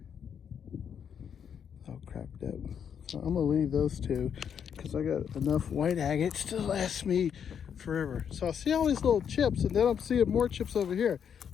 All cracked up. So I'm gonna leave those 2 because I got enough white agates to last me forever. So I see all these little chips, and then I'm seeing more chips over here.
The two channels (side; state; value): right; quieter; 7.9 dB